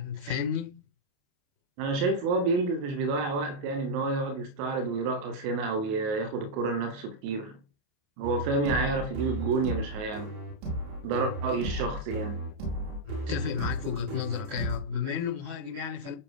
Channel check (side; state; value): left; late; 28 ms